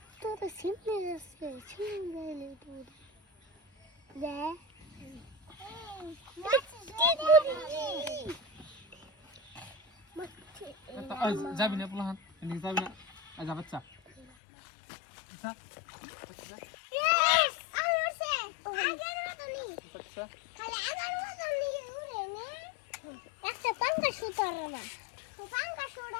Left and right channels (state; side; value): drops out; right; at 14.2 s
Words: তো সিমনে আছে সিমনে গেলে তো দে যাবি না পোলাহান এদিকে যাবি না যা বাচ্চা আচ্ছা একটা পাঙ্কা সুতার না পাঙ্কা